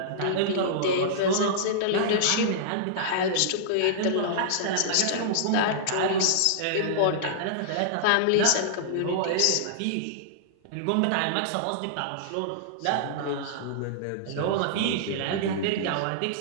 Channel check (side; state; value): both; different; correlation -0.02